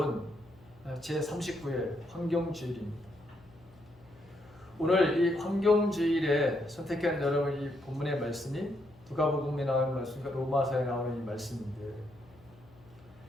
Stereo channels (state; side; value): noise; left; hum, 25 dB below the sound